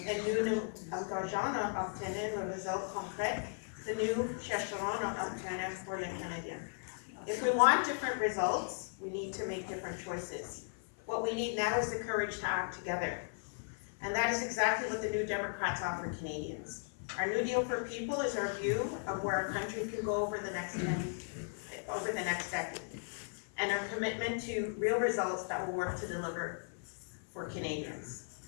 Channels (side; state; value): right; silent; 53 dB below the other